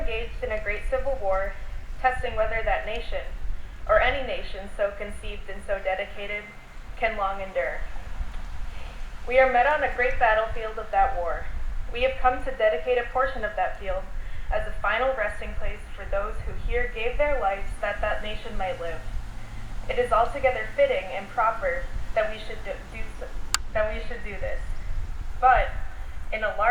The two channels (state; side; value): identical; both; correlation 1.00